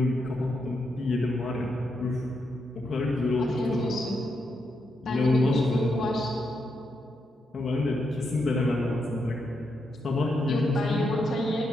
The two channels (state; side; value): normal; both; correlation 0.82